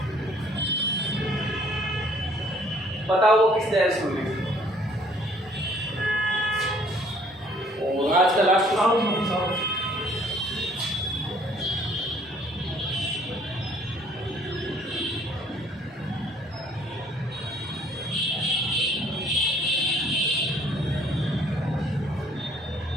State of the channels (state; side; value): normal; both; correlation 0.60